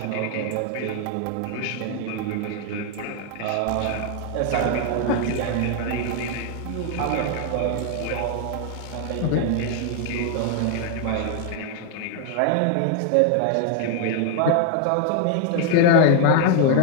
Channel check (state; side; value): different; both; correlation 0.00